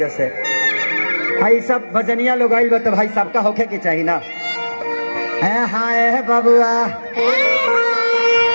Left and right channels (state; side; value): inverted; both; correlation -1.00